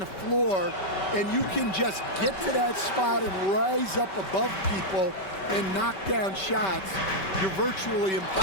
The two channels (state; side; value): late; right; 5.2 ms